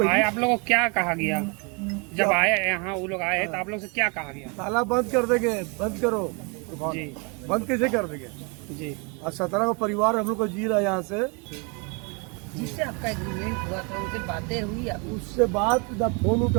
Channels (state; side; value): quieter; left; 32.5 dB